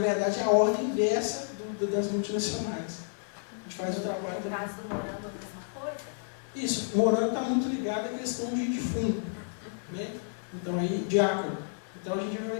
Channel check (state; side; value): silent; right; 57 dB below the other